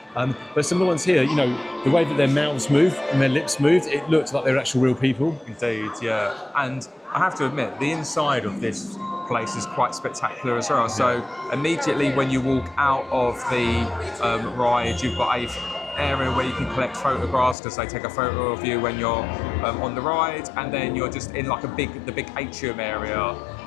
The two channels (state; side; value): drops out; right; at 17.6 s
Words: But some of the ones here, you know, the way that their mouths moved and their lips moved, it looked like they were actual real people. Indeed, yeah. And I have to admit, the inside of this place is quite spectacular as well. So immediately when you walk out of the ride, you've got a area where you can collect photographs because they take a photo of you when you're on the ride, and then you're just in like the big atrium area,